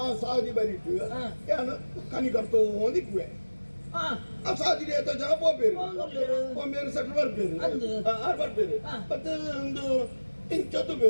ಸಾದಿ ಬರಿಟ್ಟು ಹಾ. ಏನು ಕನಿ ಕರ್ತೋ ಒಂದಿಕ್ವೆ ಆ ಆ ಸಾದಿ ರೇತ ಜನ ಪೋಪೇರು ಹೋಗ್ಲಿರು. ಒಮ್ಮೆರು ಸೆಟ್ಲ್ ಬರ್ಬೇರು ಅಂದು. ಆರು ಬರ್ಬೇರು ಹಾ. ಮತ್ತೆ ಒಂದು ಇಂಚತ್ತು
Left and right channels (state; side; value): inverted; both; correlation -1.00